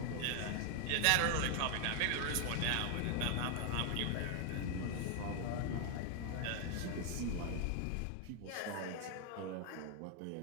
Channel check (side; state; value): both; different; correlation 0.00